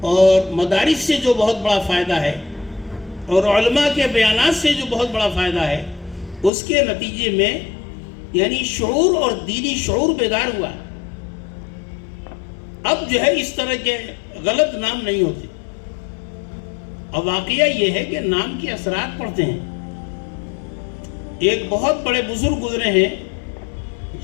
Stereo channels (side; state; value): right; drops out; at 6.5 s